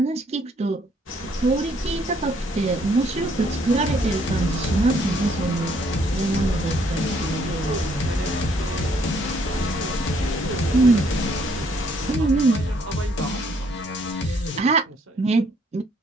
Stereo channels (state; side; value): normal; both; correlation 0.67